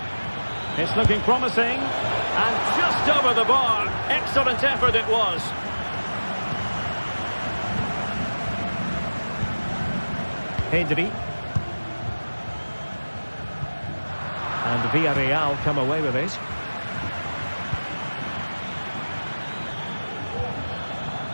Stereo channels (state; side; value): inverted; both; correlation -1.00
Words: It's looking promising, and just over the bar. Excellent effort it was. Pedri. And Villarreal come away with it.